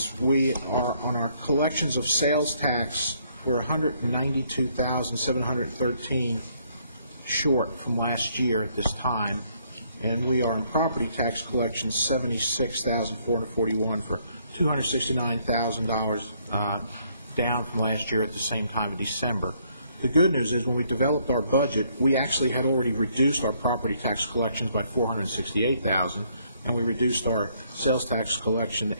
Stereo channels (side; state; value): both; inverted; correlation -0.69